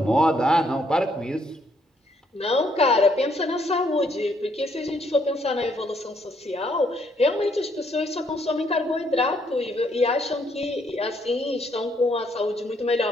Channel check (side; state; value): both; normal; correlation 0.70